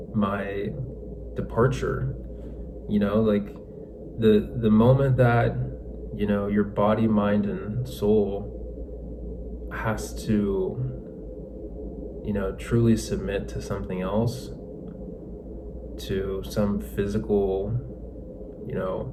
my departure. Like the moment that, your body, mind, and soul has to, truly submit to something else, to some physical,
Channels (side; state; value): both; identical; correlation 1.00